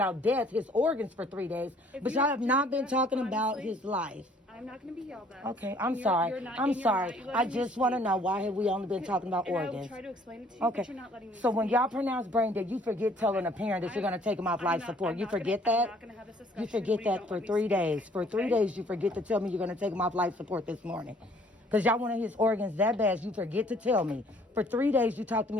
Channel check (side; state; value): both; normal; correlation 0.59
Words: death, his organs for 3 days, but y'all have not been talking about his life. I'm not going to be yelled at. Okay, I'm sorry. I'm sorry. I just want to know, why have we only been talking about organs? I will try to explain it to you, okay. But you're not letting me So when y'all pronounce brain dead, you forget telling a parent that you're going to take them off life support. You forget that? I'm not going to have this discussion. You forget that for 3 days. For 3 days, you forget to tell me you're going to take them off life support this morning. Because y'all wanted his organs that bad, you forget to tell me. For 3 days, you talk to